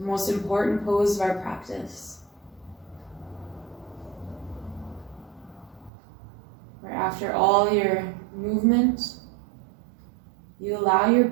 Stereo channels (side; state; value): left; drops out; at 5.9 s